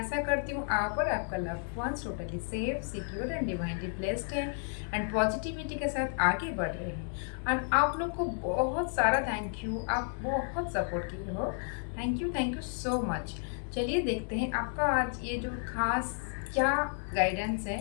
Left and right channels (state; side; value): silent; right; 56 dB below the other